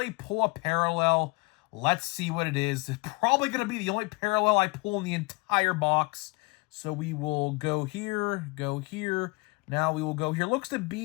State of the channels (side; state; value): right; quieter; 27.8 dB